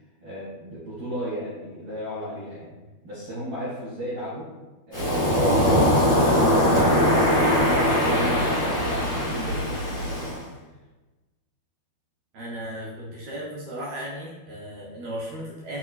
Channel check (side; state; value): left; late; 12 ms